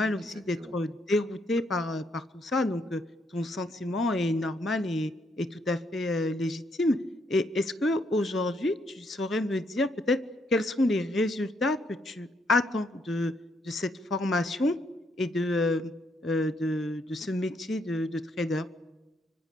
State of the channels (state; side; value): normal; both; correlation 0.73